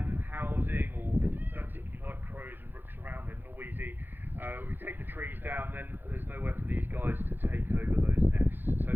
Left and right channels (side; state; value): left; late; 0.095 ms